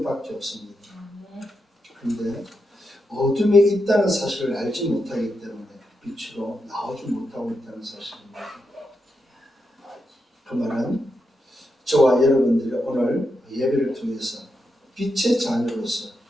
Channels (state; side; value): normal; both; correlation 0.85